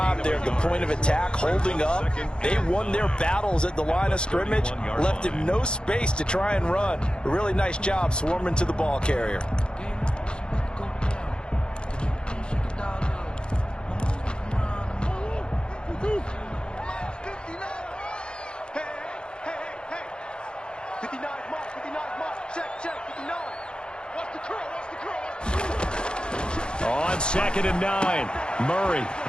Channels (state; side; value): late; right; 0.050 ms